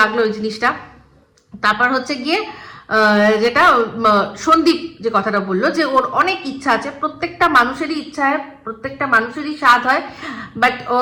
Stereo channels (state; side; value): identical; both; correlation 1.00